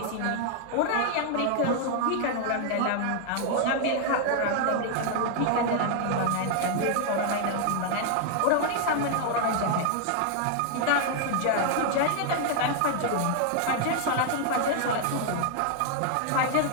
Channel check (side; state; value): both; different; correlation 0.00